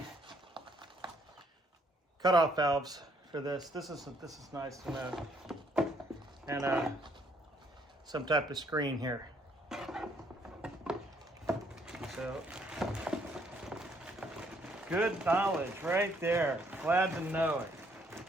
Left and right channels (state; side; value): normal; both; correlation 0.68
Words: cutoff valves for this. This is nice to know. And some type of screen here. So, good knowledge right there. Glad to know it.